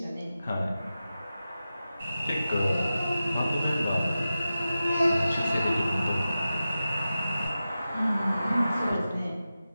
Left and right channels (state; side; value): inverted; both; correlation -0.93